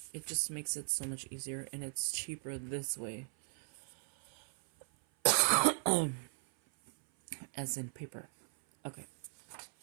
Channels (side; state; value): left; silent; 53 dB below the other